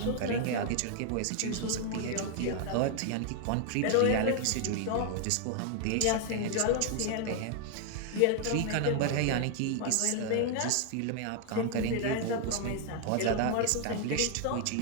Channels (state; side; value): different; both; correlation 0.00